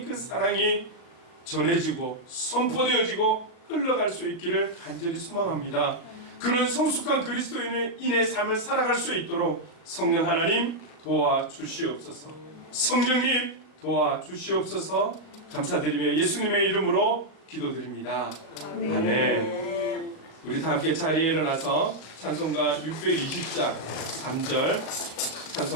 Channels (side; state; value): right; late; 38 ms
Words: 그 사랑이 전해지고 선포되어지고 흘러갈 수 있기를 간절히 소망합니다. 그런 성숙한 그리스도인의 삶을 살아갈 수 있도록 성령 하나님 도와주시옵소서. 성령님 도와주시옵소서. 감사드리며 예수님의 이름으로 기도드립니다. 아멘. 우리 다 함께 자리에 일어나서 찬송가 620장 3절